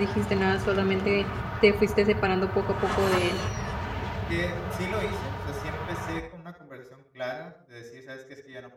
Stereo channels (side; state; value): both; identical; correlation 1.00